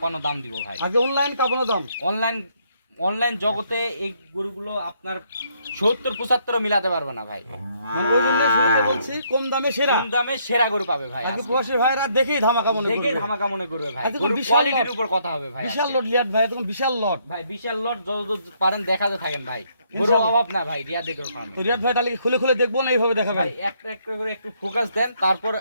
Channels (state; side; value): inverted; both; correlation -0.70